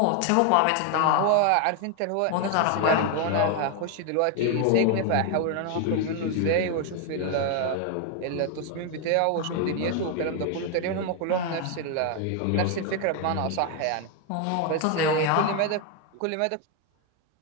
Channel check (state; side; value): different; both; correlation 0.01